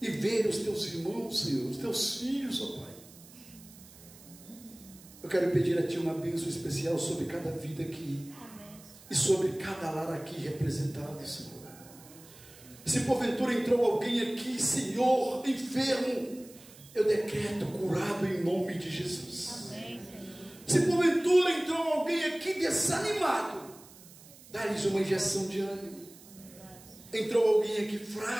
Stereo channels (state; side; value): noise; right; hiss, 21 dB below the sound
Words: e ver os Teus irmãos, Senhor, os Teus filhos, ó Pai. Eu quero pedir a Ti uma bênção especial sobre cada vida aqui. Amém. E sobre cada lar aqui representado, Senhor. Se porventura entrou alguém aqui, Senhor, enfermo, eu decreto curado em nome de Jesus. Amém, se porventura entrou alguém aqui desanimado, dá-lhes uma injeção de ânimo. Entrou alguém aqui